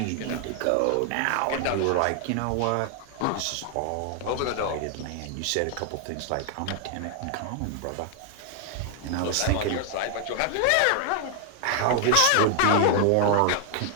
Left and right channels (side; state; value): both; different; correlation 0.00